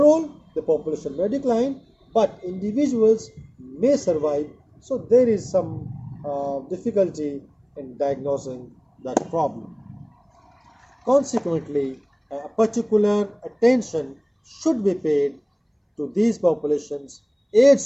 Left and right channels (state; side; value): identical; both; correlation 1.00